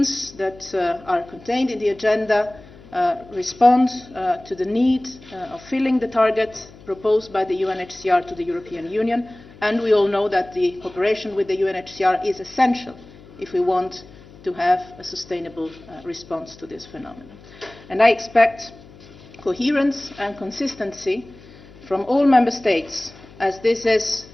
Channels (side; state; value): left; noise; hum, 21 dB below the sound